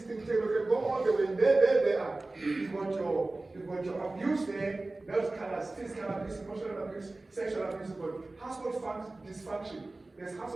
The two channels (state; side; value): quieter; left; 3.0 dB